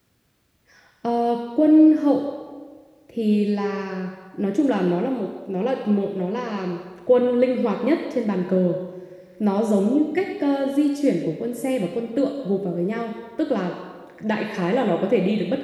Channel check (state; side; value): identical; both; correlation 1.00